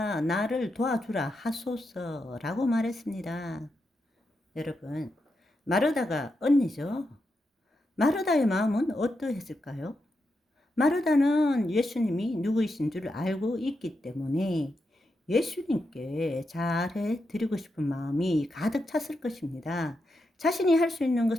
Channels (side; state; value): both; normal; correlation 0.85